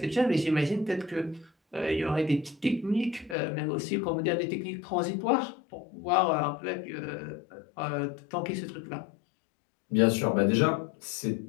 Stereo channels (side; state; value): right; drops out; at 3.4 s